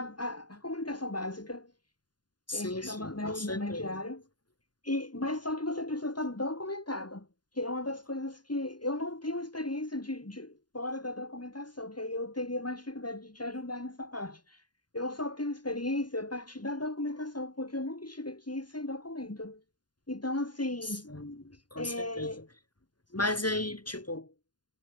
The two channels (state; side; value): late; right; 0.70 ms